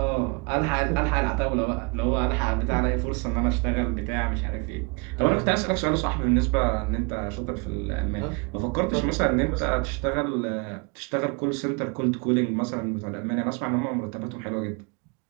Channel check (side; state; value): left; quieter; 31.5 dB